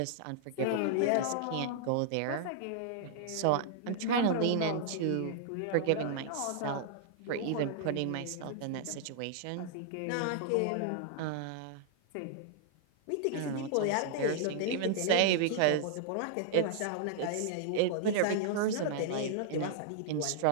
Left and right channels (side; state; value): both; different; correlation -0.01